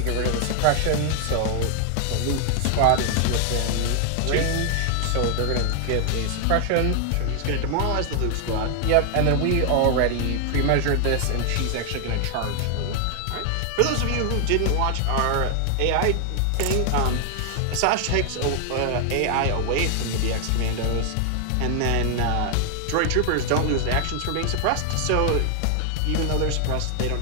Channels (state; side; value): different; both; correlation 0.00